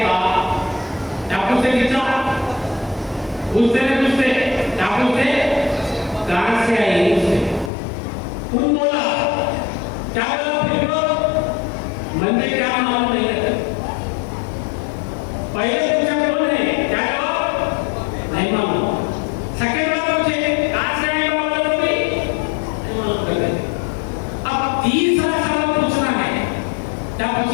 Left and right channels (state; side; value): drops out; right; at 7.7 s